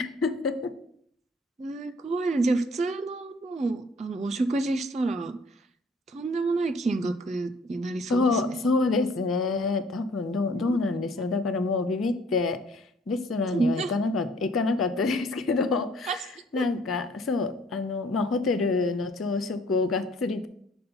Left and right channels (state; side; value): normal; both; correlation 0.57